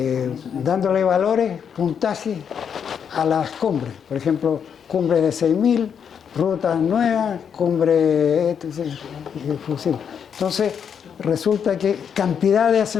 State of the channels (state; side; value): quieter; right; 7.5 dB